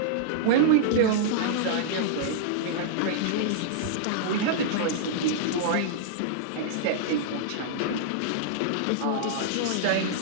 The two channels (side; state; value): both; different; correlation -0.01